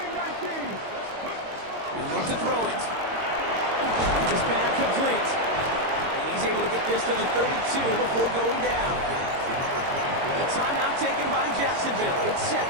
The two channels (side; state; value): left; late; 22 ms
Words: 19. He'll look to throw it. Just back complete. And he's able to get this to the 32 before going down. The timeout taken by Jacksonville. It's